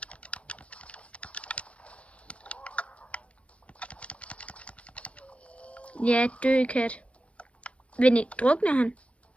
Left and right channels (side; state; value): right; late; 0.062 ms